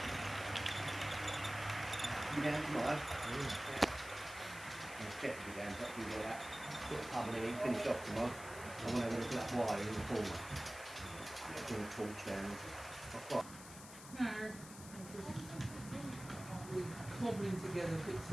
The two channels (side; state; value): left; noise; hiss, 14 dB below the sound